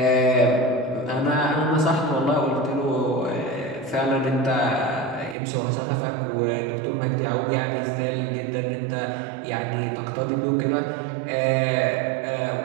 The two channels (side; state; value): left; drops out; at 5.4 s